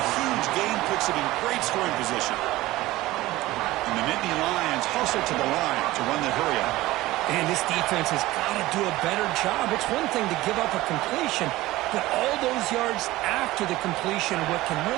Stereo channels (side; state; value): left; quieter; 17.8 dB